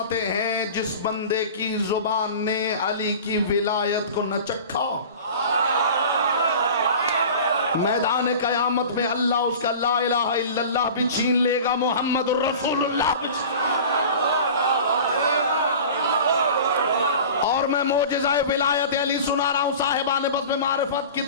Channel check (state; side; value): inverted; both; correlation -0.38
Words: हैं जिस बंदे की जुबान ने अली की विलायत को न चखा, मैदान कयामत में अल्लाह उसका ला इलाहा इल्लल्लाह भी छीन लेगा, मोहम्मद रसूलुल्लाह भी। और मैं मोजज़ा विलायत अली सुना रहा हूं साहिबान बज़्म मारिफत